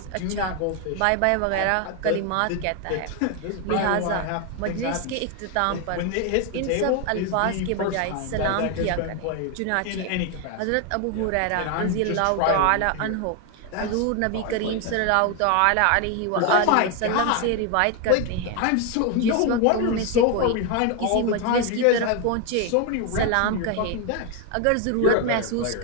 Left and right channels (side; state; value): both; different; correlation 0.01